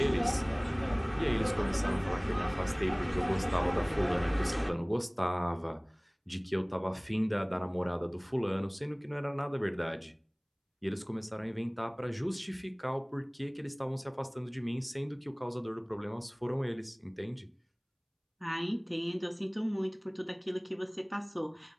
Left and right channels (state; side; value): identical; both; correlation 1.00